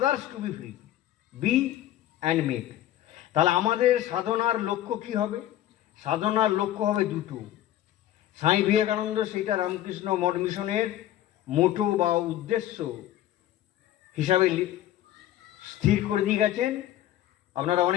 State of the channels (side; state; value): right; quieter; 13.0 dB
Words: to be free. Be and make. তাহলে আমাদের সাধনার লক্ষ্য কি হবে? সাধনার লক্ষ্য হবে দুটো। স্বামী বিবেকানন্দ সেইটা রামকৃষ্ণ মঠ মিশনের মোটো বা উদ্দেশ্য হিসাবে স্থির করে দিয়ে গেছেন। আপনারা